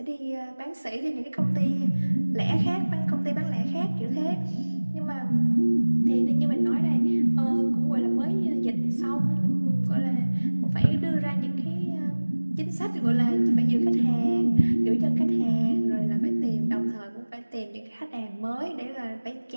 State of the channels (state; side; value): inverted; both; correlation -1.00